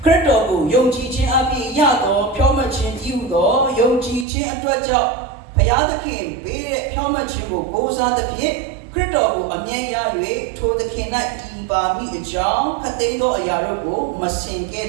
ခရစ်တော်ကိုယုံကြည်ခြင်းအဖြစ်ရသောဖြောင့်မတ်ခြင်းတည်ဟူသောယုံကြည်ခြင်းအတွက်ကြောင့်ဘုရားသခင်ပေးတဲ့ဖြောင့်မတ်ခြင်းကိုကိုးစားသဖြင့်ခရစ်တော်ကိုအမြဲရ၍ထိုသခင်၌တည်ပါမည်အကြောင်းခတ်သိမ်းသောအရာတို့ကိုမစင်ကဲ့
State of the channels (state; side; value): drops out; left; at 4.2 s